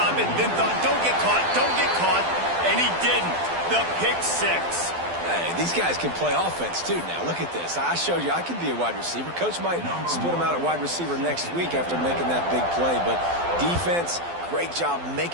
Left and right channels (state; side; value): late; left; 12 ms